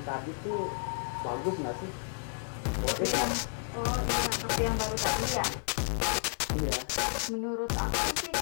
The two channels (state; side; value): silent; right; digital silence